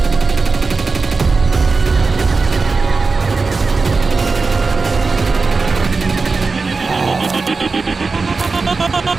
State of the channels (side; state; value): left; quieter; 4.2 dB